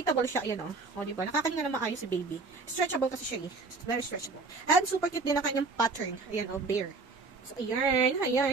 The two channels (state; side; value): quieter; left; 3.9 dB